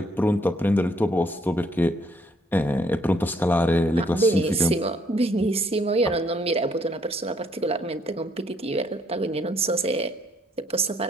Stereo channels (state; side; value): normal; both; correlation 0.67